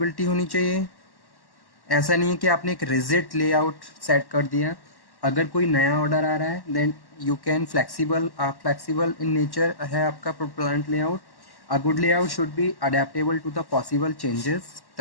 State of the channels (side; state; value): right; late; 1.1 ms